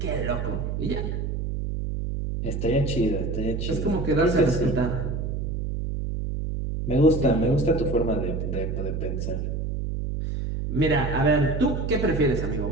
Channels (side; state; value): right; noise; hum, 2 dB below the sound